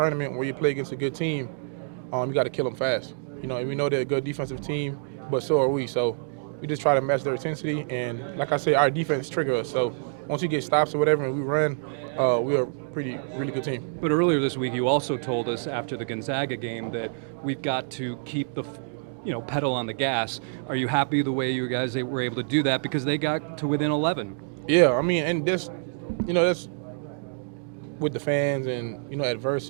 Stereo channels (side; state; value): left; silent; digital silence